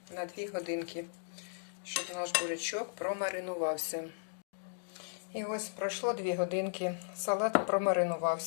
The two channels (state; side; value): silent; right; digital silence